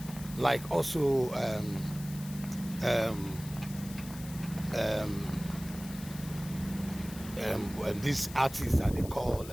Like also this artist that they call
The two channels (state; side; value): noise; left; hiss, 15 dB below the sound